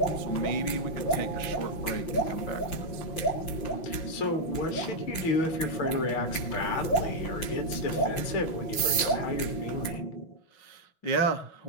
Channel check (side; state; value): right; late; 5.8 ms